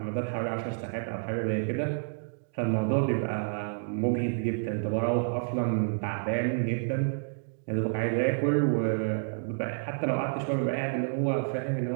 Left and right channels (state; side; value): silent; left; digital silence